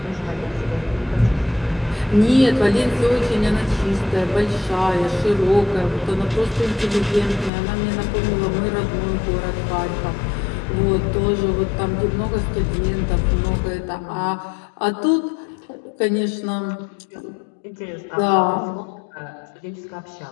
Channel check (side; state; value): right; drops out; at 7.5 s